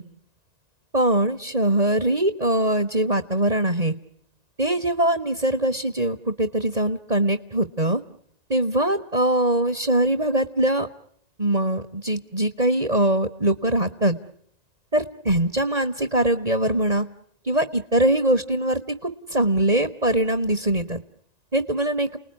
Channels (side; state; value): left; late; 1.9 ms